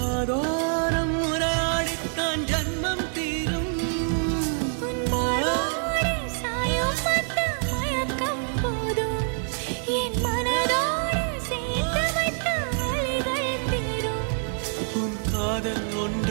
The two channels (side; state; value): left; silent; 59 dB below the other